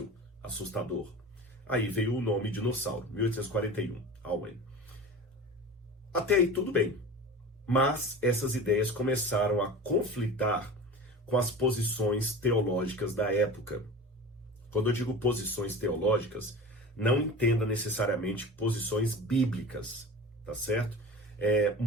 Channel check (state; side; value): normal; both; correlation 0.34